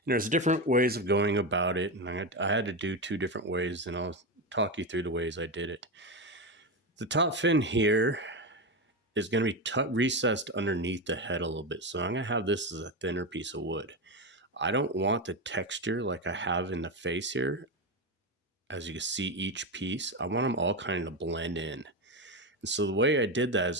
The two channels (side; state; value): both; normal; correlation 0.14